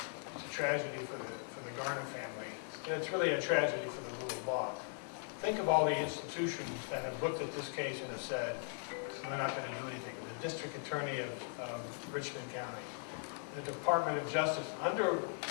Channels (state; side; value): silent; right; 52 dB below the other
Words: It's a tragedy for the Garner family. And it's really a tragedy for the rule of law. Think of all the institutions that have looked at this case and have said, we're not going to do anything. The district attorney of Richmond County, the Department of Justice under